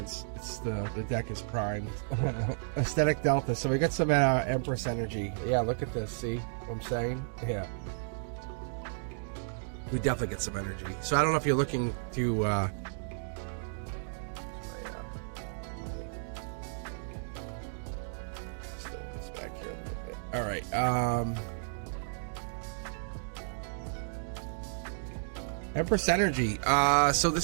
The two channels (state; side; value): silent; left; digital silence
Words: It's the deck is primed. Aesthetic Delta. So we got some Empress energy. Yeah, look at this. See what I'm saying? Yeah. we definitely get some energy. So I don't know if you're looking to step this back here a little bit. All right. Empress energy. So